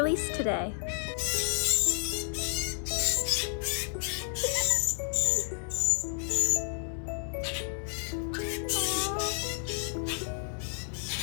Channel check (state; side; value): silent; right; 57 dB below the other